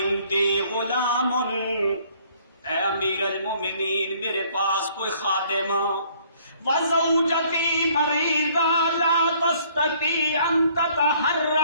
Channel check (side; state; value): both; inverted; correlation -0.60